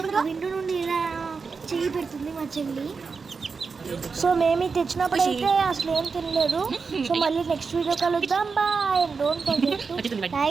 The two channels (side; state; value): left; quieter; 5.0 dB